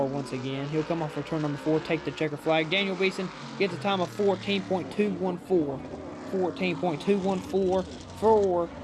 once again. He'll come off for turn number 4, take the checker flag. Daniel Beeson gets a time of 14.214. 14.214 for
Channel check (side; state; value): both; identical; correlation 1.00